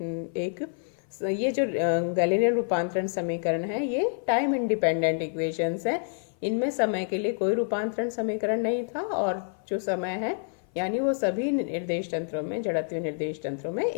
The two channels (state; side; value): silent; right; 57 dB below the other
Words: ये जो गैलीलियन रूपांतरण समीकरण है ये टाइम इंडिपेंडेंट इक्वेशंस है। इनमें समय के लिए कोई रूपांतरण समीकरण नहीं था और जो समय है यानी वो सभी निर्देश तंत्रों में, जड़त्वीय निर्देश तंत्रों में